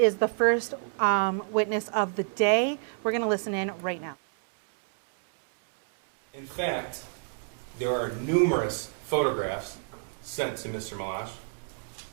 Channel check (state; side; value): silent; left; 56 dB below the other